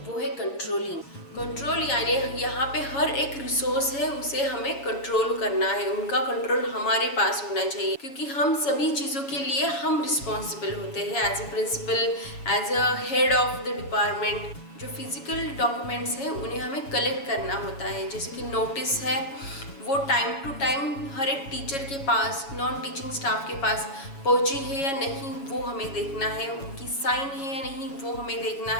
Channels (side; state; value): right; late; 7.3 ms